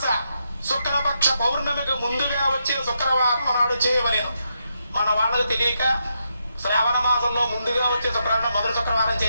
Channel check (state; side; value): inverted; both; correlation -0.82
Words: శుక్లపక్ష పౌర్ణమికి ముందుగా వచ్చే శుక్రవారం నాడు చేయవలేను. మన వాళ్ళకు తెలియక శ్రావణ మాసంలో ముందుగా వచ్చే శుక్రవారం మొదటి శుక్రవారం